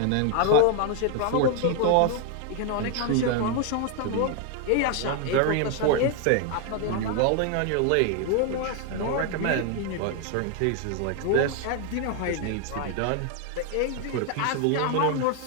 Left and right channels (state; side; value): different; both; correlation 0.00